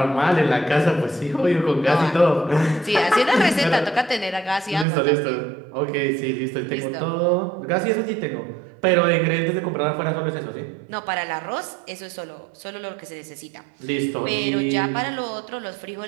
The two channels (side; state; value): left; drops out; at 4.9 s